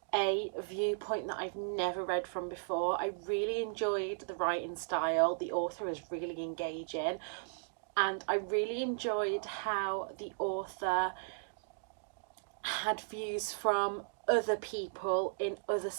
a viewpoint that I've never read from before. I really enjoyed the writing style. The author is really engaging, and I really enjoyed how the author had views from other people in other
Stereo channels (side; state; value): left; silent; digital silence